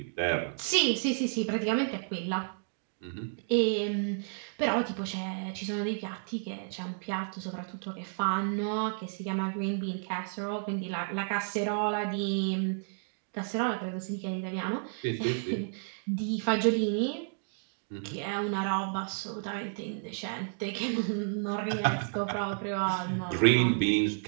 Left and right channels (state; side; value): silent; left; digital silence